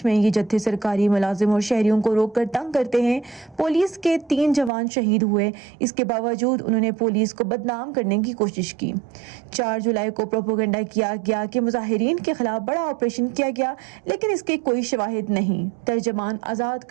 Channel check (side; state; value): left; drops out; at 4.7 s